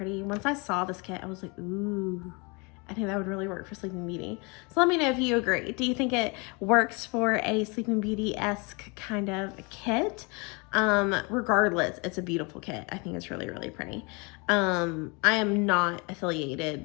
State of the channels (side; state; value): right; quieter; 29.9 dB